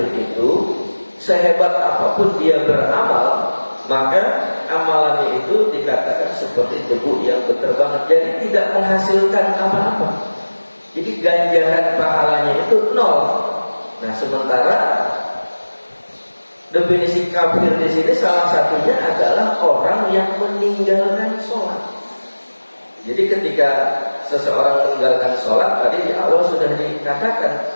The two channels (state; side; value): inverted; both; correlation -1.00